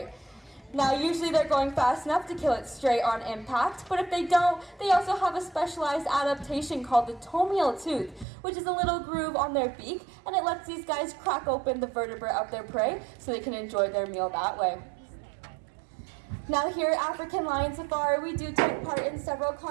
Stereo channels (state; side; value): drops out; left; at 8.2 s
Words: Now usually they're going fast enough to kill it straight on impact, but if they don't, they also have a specialized adaptation called the tomial tooth, which is a little groove on their beak, and it lets these guys crack open the vertebrae of their prey so they can enjoy their meal that way. Now here at African Lion Safari, we do take part in several